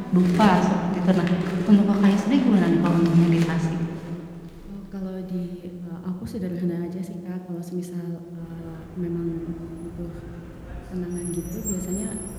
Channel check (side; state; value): both; identical; correlation 1.00